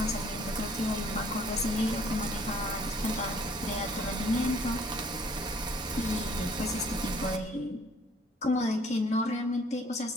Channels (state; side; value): normal; both; correlation 0.59